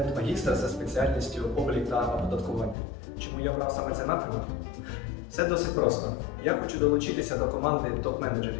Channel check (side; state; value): right; drops out; at 2.8 s